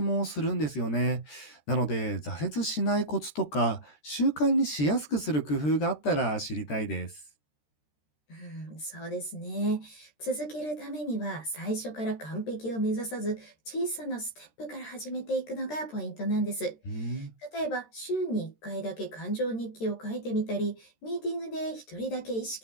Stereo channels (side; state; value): right; late; 13 ms